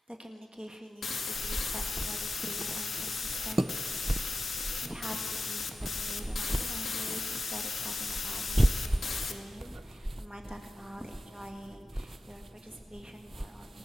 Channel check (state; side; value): normal; both; correlation 0.94